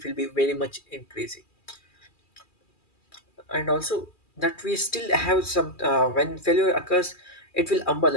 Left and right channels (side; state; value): right; late; 2.4 ms